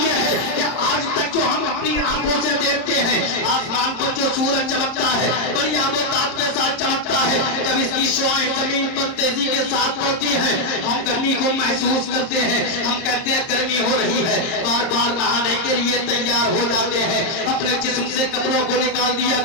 ہے کہ آج تک جو ہم اپنی آنکھوں سے دیکھتے ہیں آسمان کو جو سورج چمکتا ہے بڑی آب و تاب کے ساتھ چمکتا ہے، جب اس کی شعاعیں زمین پر تیزی کے ساتھ پڑتی ہیں ہم گرمی کو محسوس کرتے ہیں، ہم کہتے ہیں گرمی ہو رہی ہے، بار بار نہانے کے لیے تیار ہو جاتے ہیں، اپنے جسم سے کپڑوں کو نکال دیا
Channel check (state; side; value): late; right; 30 ms